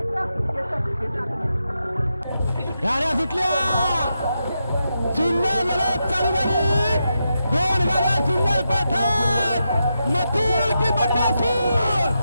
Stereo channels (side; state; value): both; inverted; correlation -0.86